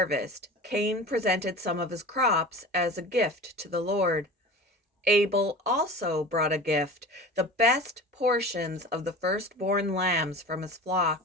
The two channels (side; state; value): both; normal; correlation 0.35